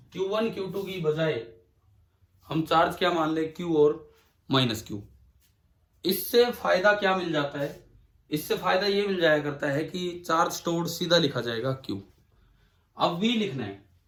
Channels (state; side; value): identical; both; correlation 1.00